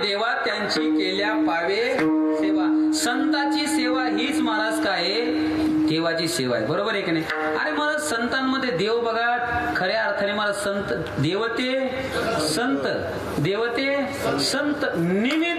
देवा त्यांची केल्या पावे सेवा. संताची सेवा हीच महाराज काय देवाची सेवा आहे. बरोबर आहे की नाही. अरे महाराज संतांमध्ये देव बघा खऱ्या अर्थाने महाराज संत देवते संत देवते संत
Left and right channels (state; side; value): identical; both; correlation 1.00